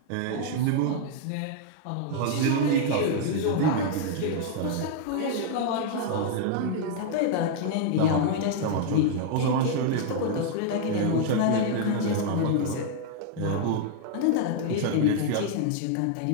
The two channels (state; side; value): different; both; correlation 0.00